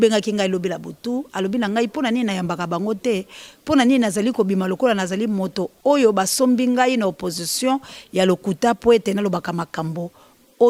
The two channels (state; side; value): identical; both; correlation 1.00